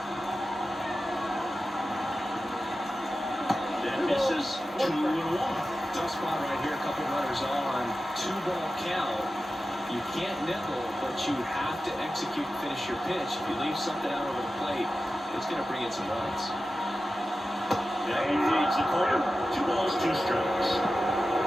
That misses. 2-1. Tough spot right here. A couple runners on. 2-ball count. You can't nickel, but you have to execute and finish your pitch. If you leave something out over the plate, it's going to bring in some runs. Now he fades the corner. 2 balls, 2 strikes.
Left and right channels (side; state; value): both; normal; correlation 0.93